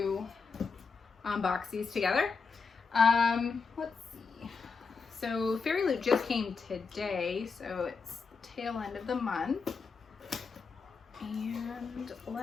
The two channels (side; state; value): right; quieter; 5.0 dB